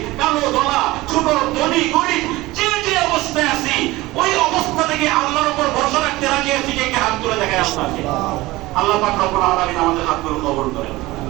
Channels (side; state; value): left; quieter; 19.4 dB